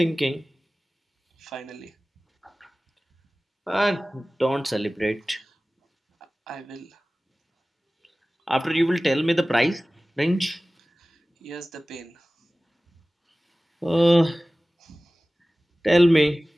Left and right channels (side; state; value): both; normal; correlation 0.97